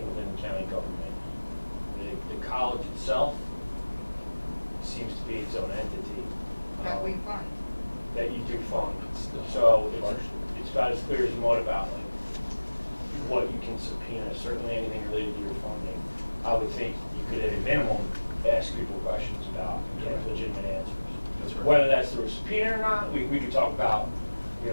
within the county government. The college itself seems to be its own entity. That we fund. That you do fund. So it's about as clear as mud about like what you can subpoena, certainly anything related to your funding. I would think you could at a minimum ask people questions about and get legitimate answers. That's right. Whether that's through a subpoena or not, we could talk about, you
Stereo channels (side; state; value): both; inverted; correlation -1.00